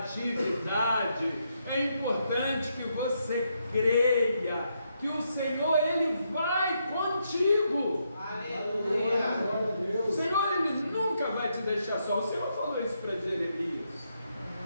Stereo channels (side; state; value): both; inverted; correlation -0.79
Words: é importante que você creia que o Senhor, Ele vai contigo. Aleluia! O Senhor, Ele nunca vai te deixar só. O Senhor falou isso para Jeremias.